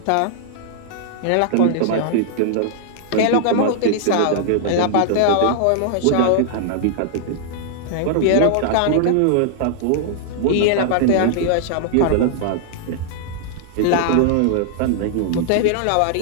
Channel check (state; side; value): different; both; correlation -0.01